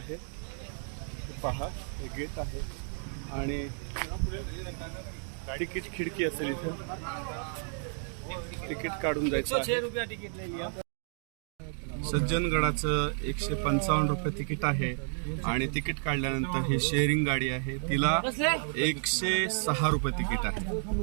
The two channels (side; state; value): left; silent; 57 dB below the other